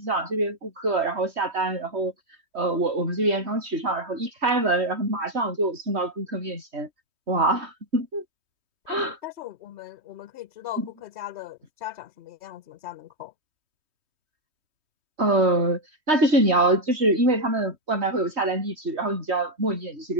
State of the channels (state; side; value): late; left; 3.2 ms